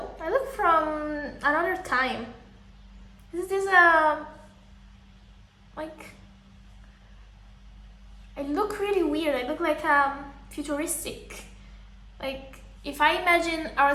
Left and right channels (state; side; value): identical; both; correlation 1.00